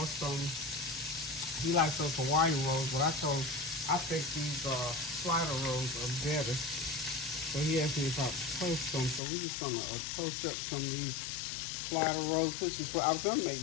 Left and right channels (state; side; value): drops out; right; at 9.2 s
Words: some, he likes those Hawaiian rolls, but I think these slider rolls are better. So he asked me if I toast them, so we're just gonna toast up some of these slider rolls, which is what I was gonna make